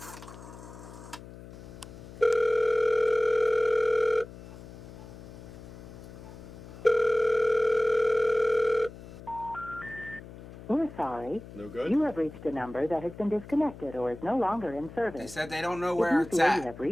We're sorry. No good? You have reached a number that has been disconnected or is no longer in service. They said they don't know If where you it's feel you at. have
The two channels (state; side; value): noise; left; hum, 15 dB below the sound